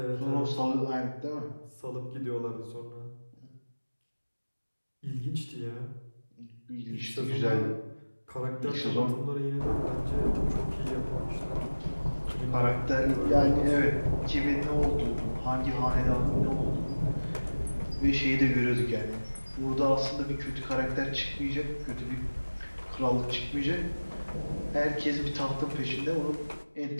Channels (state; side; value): inverted; both; correlation -1.00